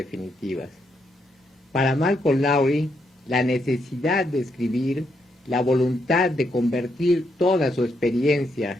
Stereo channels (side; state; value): both; normal; correlation 0.78